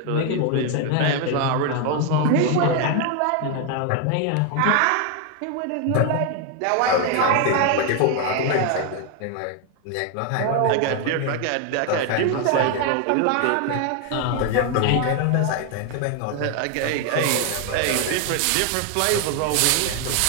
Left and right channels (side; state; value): both; different; correlation 0.01